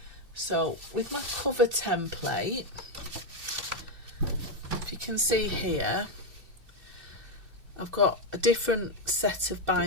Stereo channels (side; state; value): left; late; 2.6 ms